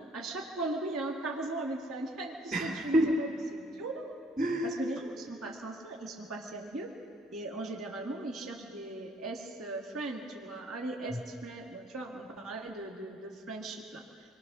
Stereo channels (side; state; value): both; normal; correlation 0.61